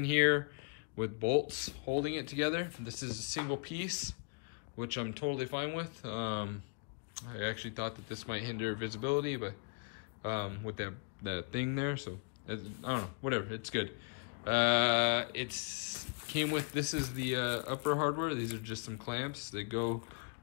here with bolts holding it together. This is a single piece, which I'm totally fine with. I actually thought that this might hinder visibility, but with that thing there, so I don't know, whatever, it's good. It's came with, this is the upper hardware. These are just some clamps that go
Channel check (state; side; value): quieter; right; 34.8 dB